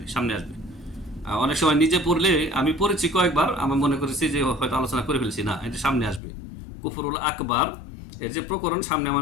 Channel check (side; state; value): right; drops out; at 6.2 s